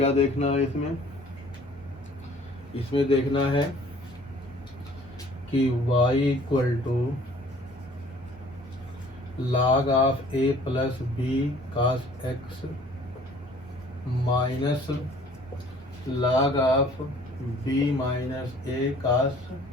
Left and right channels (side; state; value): both; normal; correlation 0.53